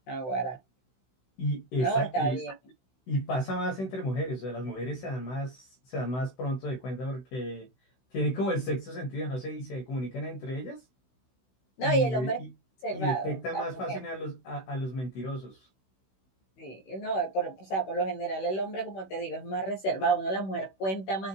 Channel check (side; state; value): right; late; 16 ms